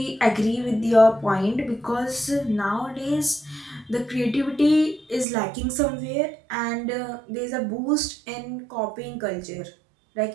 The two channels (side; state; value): left; drops out; at 5.2 s